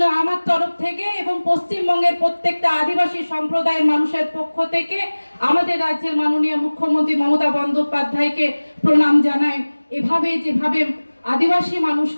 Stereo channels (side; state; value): both; inverted; correlation -1.00